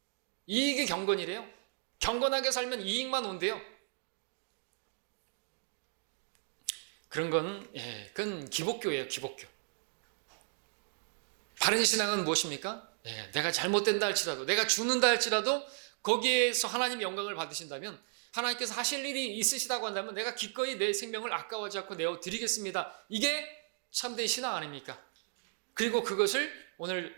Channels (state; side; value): silent; left; digital silence